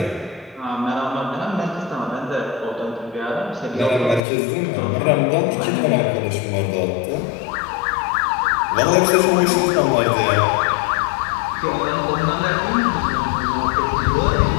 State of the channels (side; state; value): right; drops out; at 4.2 s